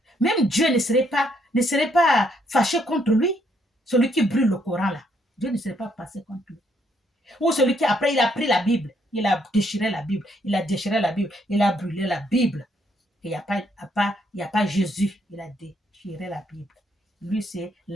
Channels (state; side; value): normal; both; correlation 0.72